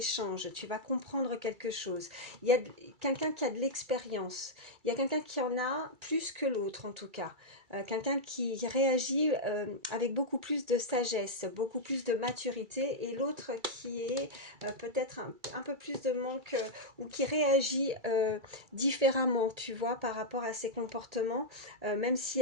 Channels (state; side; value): late; left; 2.3 ms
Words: Tu vas comprendre quelque chose. Il y a quelqu'un qui a de l'expérience, il y a quelqu'un qui en a plus que l'autre en tout cas. Quelqu'un qui réagit avec beaucoup plus de sagesse, beaucoup plus de maturité, et l'autre qui est peut-être un peu plus de manque ou qui réagit différemment, tu vois, par rapport à ses comportements, même si